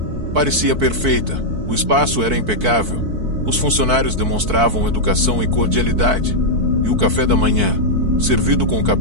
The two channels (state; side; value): late; left; 4.5 ms